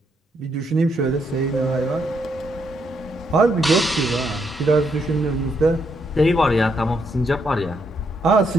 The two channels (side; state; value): both; normal; correlation 0.76